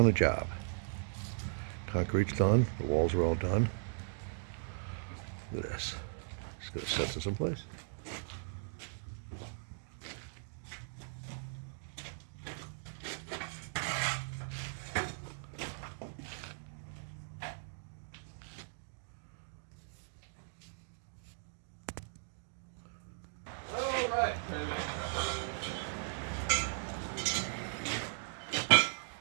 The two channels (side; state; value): left; silent; digital silence